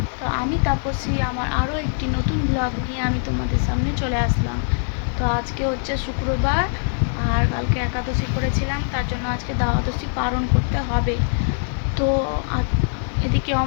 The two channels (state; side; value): silent; right; 64 dB below the other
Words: তো আমি তাপসী আমার আরও একটি নতুন ব্লগ নিয়ে আমি তোমাদের সামনে চলে আসলাম। তো আজকে হচ্ছে শুক্রবার আর কালকে একাদশী করেছিলাম, তার জন্য আজকে দ্বাদশী পালন করতে হবে। তো এদিকে